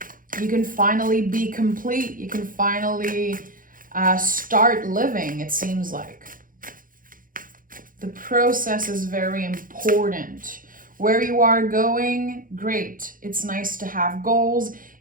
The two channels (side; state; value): left; late; 0.40 ms